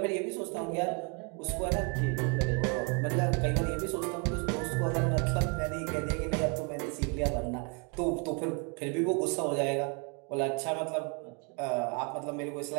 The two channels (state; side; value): quieter; left; 35.6 dB